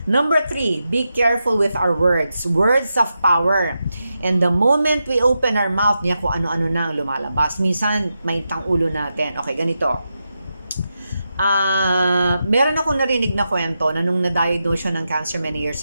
Number 3, be careful with our words. Words of power. And the moment we open our mouth, niya kung ano-ano na ang lumalabas. Minsan, may tang ulo natin. Okay, ganito. Meron ako narinig na kwento na nung na-diagnose siya ng cancer many years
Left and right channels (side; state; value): both; inverted; correlation -0.88